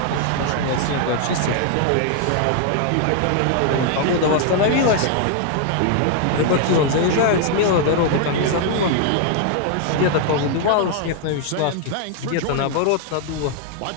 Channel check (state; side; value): different; both; correlation 0.00